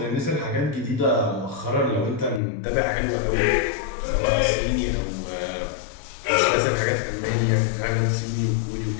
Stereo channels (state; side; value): drops out; right; at 2.4 s